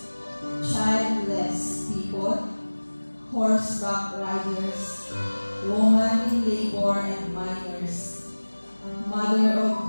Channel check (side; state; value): both; inverted; correlation -1.00